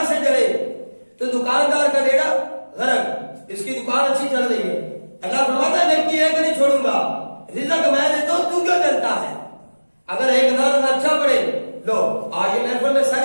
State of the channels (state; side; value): inverted; both; correlation -1.00